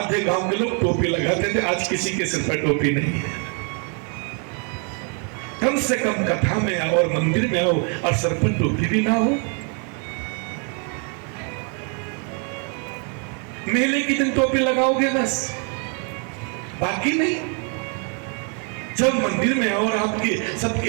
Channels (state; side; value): quieter; left; 38.7 dB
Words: गांव के लोग टोपी लगाते थे। आज किसी के सिर पर टोपी नहीं है। कम से कम कथा में आओ और मंदिर में आओ और सर पर टोपी भी ना हो। मेले के दिन टोपी लगाओगे बस, बाकी नहीं। जब मंदिर में और आपके